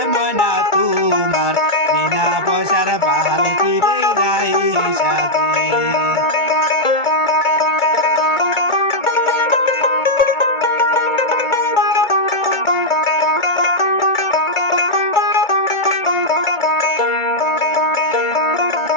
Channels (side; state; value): right; late; 2.2 ms